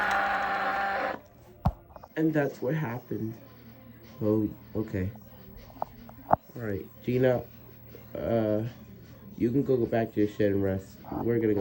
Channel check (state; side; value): identical; both; correlation 1.00